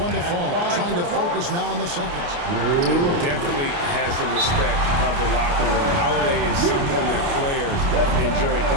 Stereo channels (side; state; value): left; late; 29 ms